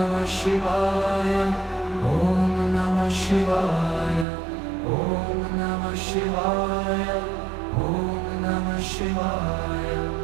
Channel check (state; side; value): drops out; left; at 4.2 s